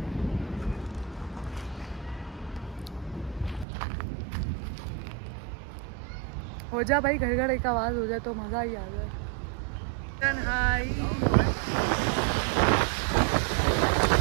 हो जा भाई, घर घर एक आवाज़ हो जाए तो मज़ा ही आ जाए। हाय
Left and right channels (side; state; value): left; drops out; at 3.7 s